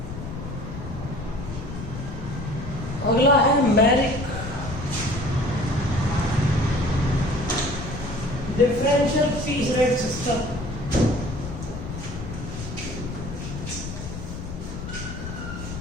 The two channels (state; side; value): noise; left; rumble, 8 dB below the sound